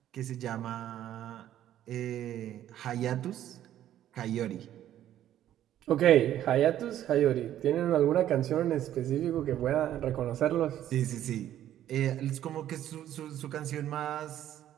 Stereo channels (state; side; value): quieter; left; 11.8 dB